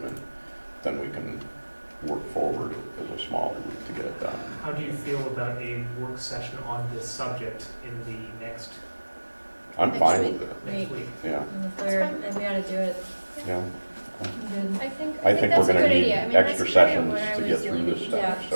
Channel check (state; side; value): inverted; both; correlation -1.00